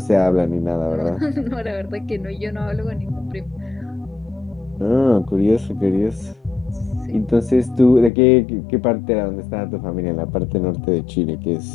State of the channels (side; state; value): right; drops out; at 8.1 s